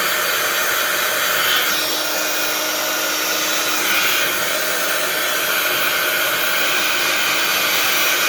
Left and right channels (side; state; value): both; identical; correlation 1.00